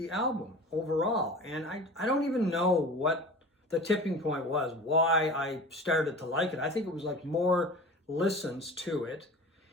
album overall. And I don't even know what the tipping point was, why I started to like it. I think it was like more listens to it.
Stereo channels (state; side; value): normal; both; correlation 0.37